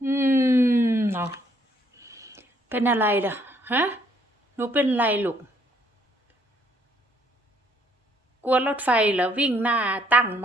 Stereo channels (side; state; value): both; normal; correlation 0.67